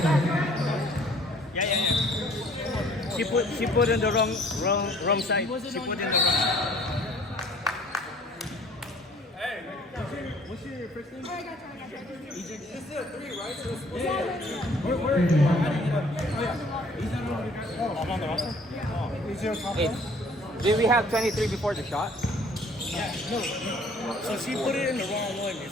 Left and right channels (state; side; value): normal; both; correlation 0.56